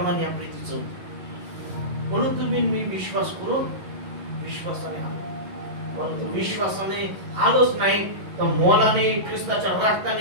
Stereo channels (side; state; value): left; late; 11 ms